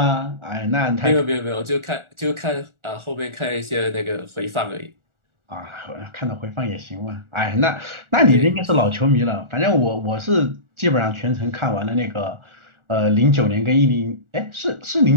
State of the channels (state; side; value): late; left; 1.4 ms